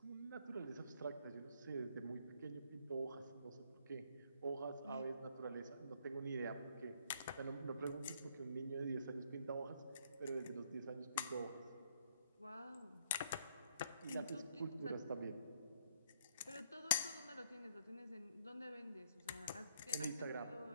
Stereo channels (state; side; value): inverted; both; correlation -0.67